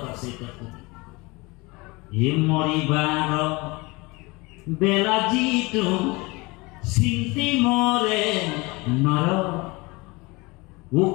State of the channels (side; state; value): right; quieter; 24.7 dB